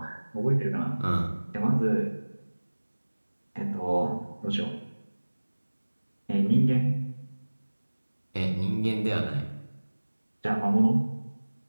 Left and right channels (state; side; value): inverted; both; correlation -1.00